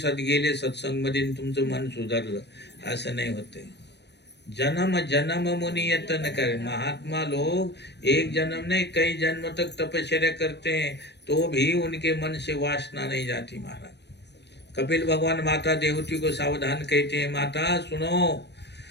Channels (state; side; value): late; right; 0.50 ms